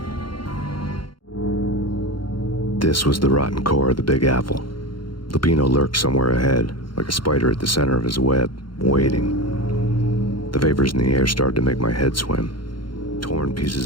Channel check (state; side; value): late; right; 0.72 ms